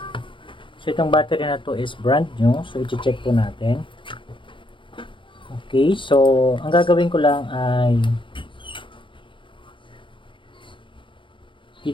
So, itong battery na to is brand new. So, i-check po natin. Okay. So, ang gagawin ko lang ay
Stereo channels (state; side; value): late; right; 0.24 ms